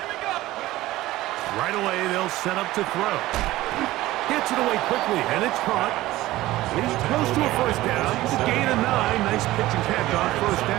we go. Right away, they'll set up to throw. Gets it away quickly, and it's caught. He's close to a first down. It's a gain of 9. Nice pitch and catch on first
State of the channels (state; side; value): quieter; left; 16.9 dB